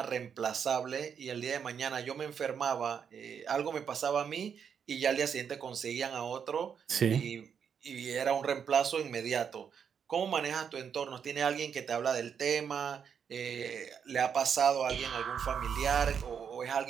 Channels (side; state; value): left; quieter; 7.3 dB